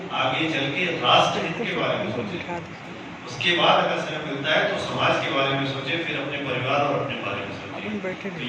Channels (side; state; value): both; identical; correlation 1.00